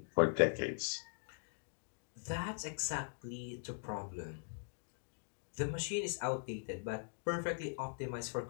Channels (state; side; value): silent; right; digital silence